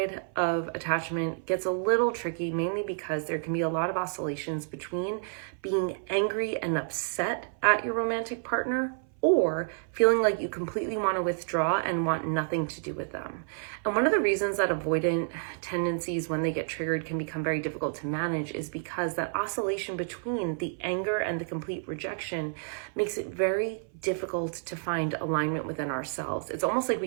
of attachment gets a little tricky, mainly because there can be a lot of oscillations between being angry and upset at your romantic partner or feeling like you completely want to withdraw and want nothing to do with them. And one of the reasons that avoidant tendencies, when they get triggered, can become very difficult to manage is because that oscillation between the anger and the complete rejection makes it very difficult to find alignment within ourselves. It's almost like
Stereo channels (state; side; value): silent; left; 58 dB below the other